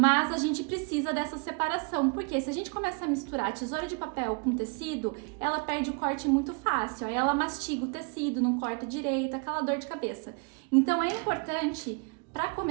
a gente precisa dessa separação, porque se a gente começa a misturar a tesoura de papel com tecido, ela perde o corte muito fácil, aí ela mastiga o tecido, não corta direito, aquela dor de cabeça. Então é importante, para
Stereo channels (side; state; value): left; quieter; 34.6 dB